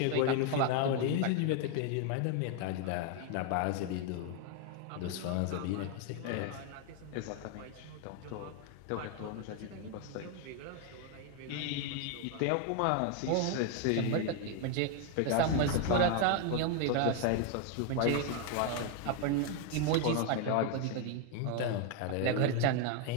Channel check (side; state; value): both; different; correlation 0.01